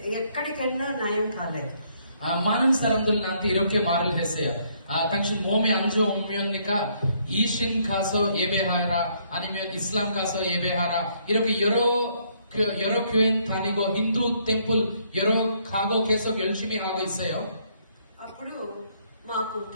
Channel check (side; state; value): both; inverted; correlation -0.69